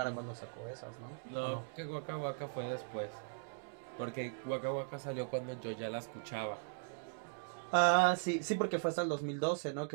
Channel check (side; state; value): left; silent; digital silence